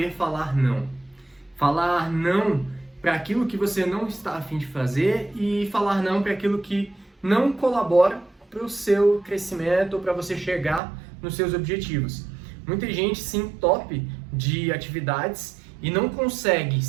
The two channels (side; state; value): left; drops out; at 10.8 s